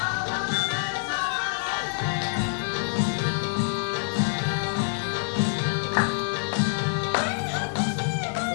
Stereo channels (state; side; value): silent; right; digital silence